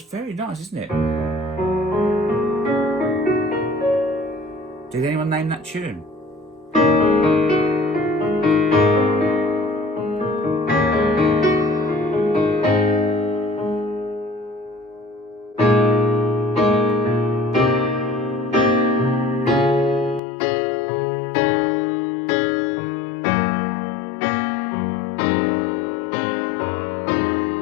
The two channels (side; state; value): right; drops out; at 20.2 s